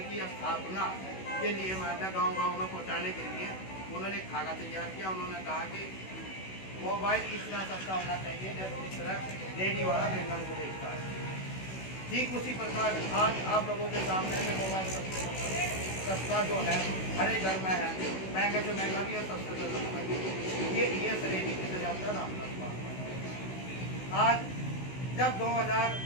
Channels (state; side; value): late; right; 16 ms